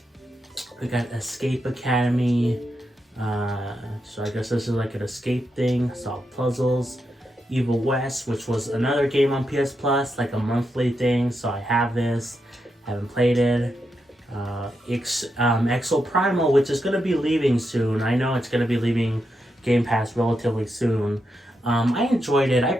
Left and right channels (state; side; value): normal; both; correlation 0.85